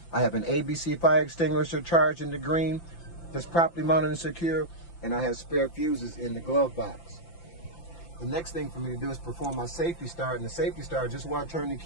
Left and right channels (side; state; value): right; late; 5.9 ms